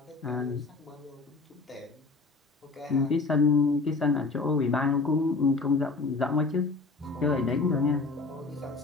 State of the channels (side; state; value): right; quieter; 3.9 dB